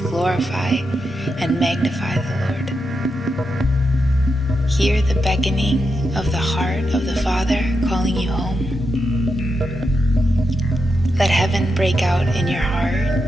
and magnify the Lord. Hear the beckoning of the heart of the Father calling you home. Let heaven break out in your heart,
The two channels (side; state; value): both; normal; correlation 0.86